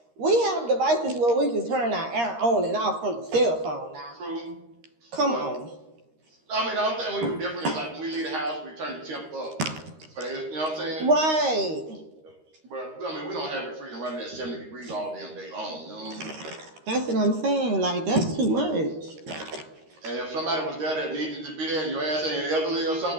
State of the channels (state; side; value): late; left; 13 ms